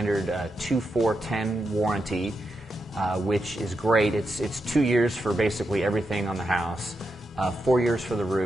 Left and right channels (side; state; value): both; normal; correlation 0.86